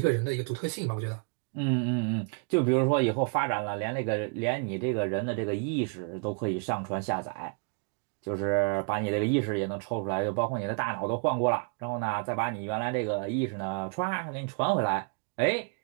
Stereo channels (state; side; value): quieter; left; 39.5 dB